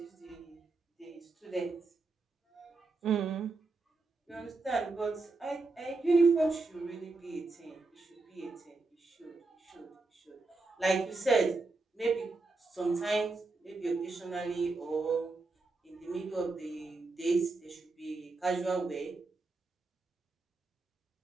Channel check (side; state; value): left; quieter; 3.5 dB